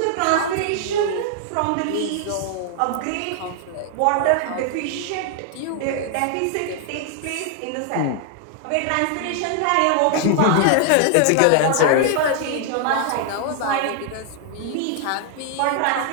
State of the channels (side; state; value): both; different; correlation 0.00